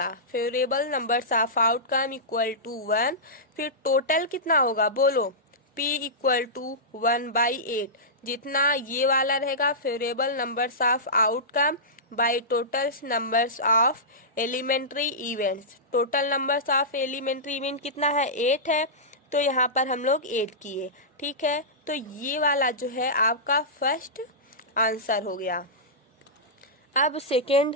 Favourable numbers of outcome equal to 1, फिर टोटल कितना होगा बोलो, P इक्वल टू 1/8, जितना ये वाला रहेगा favourable numbers of outcome by total numbers of elementary events. Total numbers of elementary event कितना है, 8 है, तो यहाँ पर हम लोग 8 किए। ठीक है, तो ये वाला जो है आपका फर्स्ट आंसर हो गया। अब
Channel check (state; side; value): normal; both; correlation -0.16